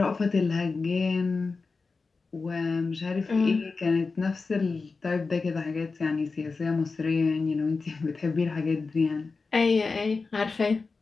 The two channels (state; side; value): quieter; right; 4.2 dB